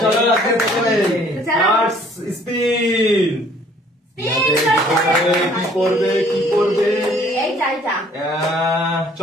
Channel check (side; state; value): both; normal; correlation 0.58